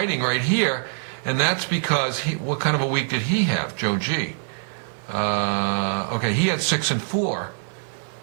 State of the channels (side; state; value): left; silent; 63 dB below the other